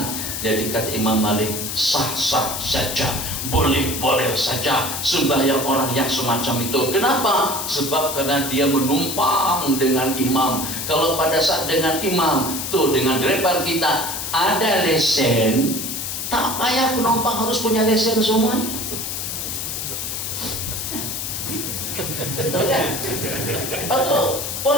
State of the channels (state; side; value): noise; left; hiss, 4 dB below the sound